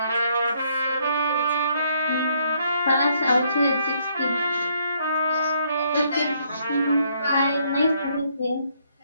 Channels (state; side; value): inverted; both; correlation -0.69